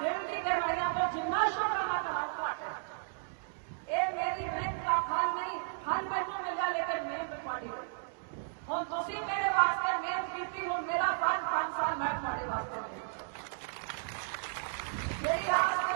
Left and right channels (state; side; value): silent; left; digital silence